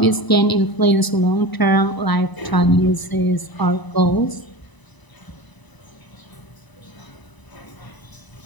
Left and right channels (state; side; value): late; right; 1.0 ms